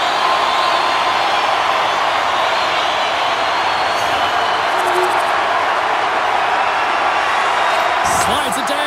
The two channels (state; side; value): identical; both; correlation 1.00